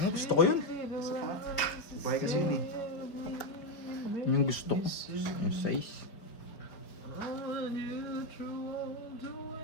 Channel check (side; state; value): right; late; 4.7 ms